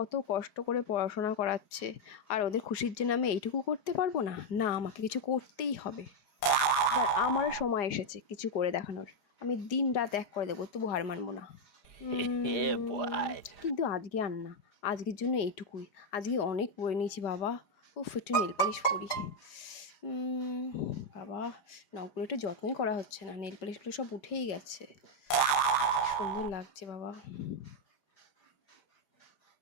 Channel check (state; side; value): late; right; 4.9 ms